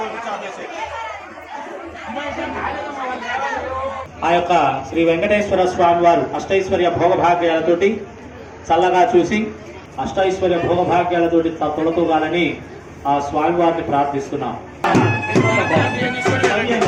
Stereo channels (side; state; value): both; identical; correlation 1.00